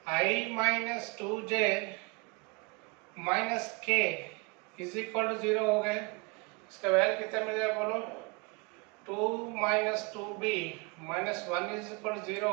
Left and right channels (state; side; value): quieter; left; 29.4 dB